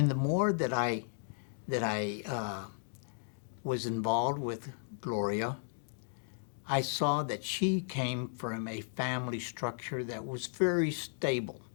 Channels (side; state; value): right; silent; digital silence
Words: the more that I was involved with Gloria, I saw that she came from a family structure that was very stable.